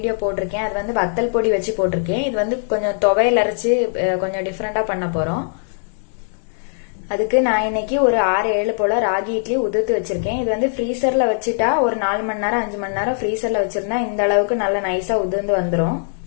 போட்டிருக்கேன். அது வந்து வத்தல் பொடி வச்சு போட்டிருக்கேன். இது வந்து கொஞ்சம் துவையல் அரைச்சு கொஞ்சம் டிஃப்ரெண்டா பண்ண போறோம். அதுக்கு நான் இன்னைக்கு ஒரு 6-7 போல ராகி இட்லி உதிர்த்து வச்சிருக்கேன். இது வந்து ஃப்ரீசர்ல வச்சுட்டா ஒரு 4 மணி நேரம் 5 மணி நேரம் ஃப்ரீசர்ல வச்சிருந்தா இந்த அளவுக்கு நல்ல நைஸா உதிர்ந்து வந்துடும்.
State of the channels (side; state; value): right; silent; digital silence